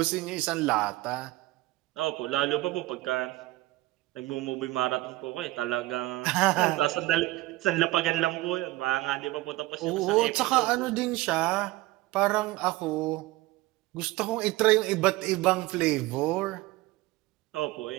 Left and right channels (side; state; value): left; quieter; 18.6 dB